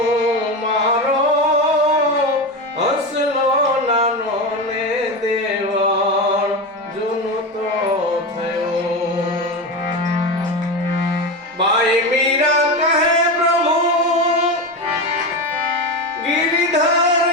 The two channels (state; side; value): normal; both; correlation 0.19